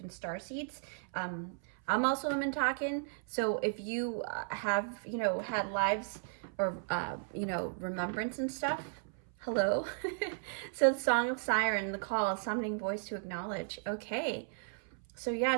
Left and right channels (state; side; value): silent; left; 54 dB below the other